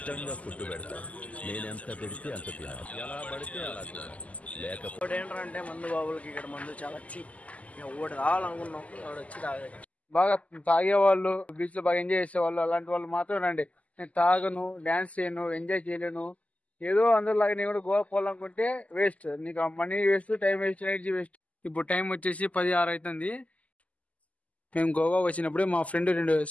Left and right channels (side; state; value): right; late; 0.070 ms